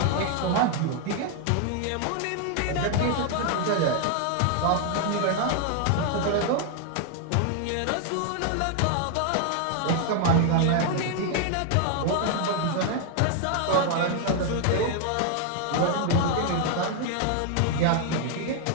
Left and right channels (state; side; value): different; both; correlation 0.00